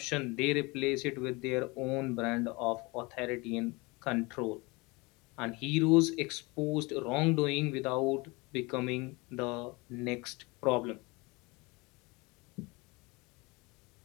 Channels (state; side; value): quieter; right; 25.6 dB